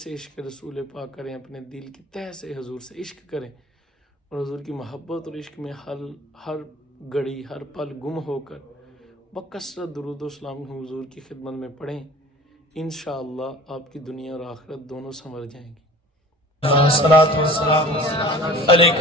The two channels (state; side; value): normal; both; correlation 0.43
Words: سے عشق رسول پاک کریں، اپنے دل کی تہ سے حضور سے عشق کریں اور حضور کی محبت اور عشق میں ہر گھڑی ہر پل گم ہو کر بکثرت درود و سلام حضور کی خدمت میں پڑھیں۔ انشاءاللہ آپ کی دنیا اور آخرت دونوں سنور جائیں گی۔ الصلاۃ والسلام علیک